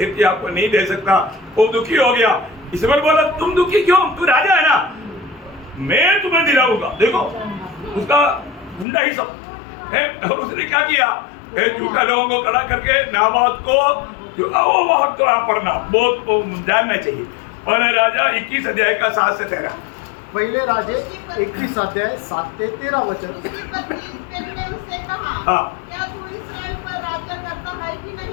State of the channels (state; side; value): drops out; right; at 8.8 s